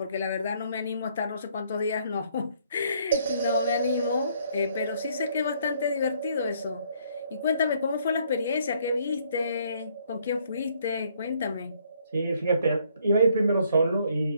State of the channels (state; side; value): inverted; both; correlation -0.66